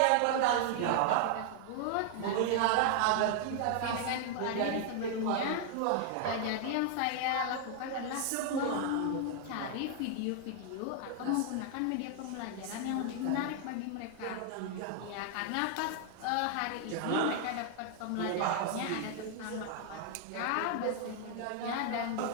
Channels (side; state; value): both; different; correlation 0.00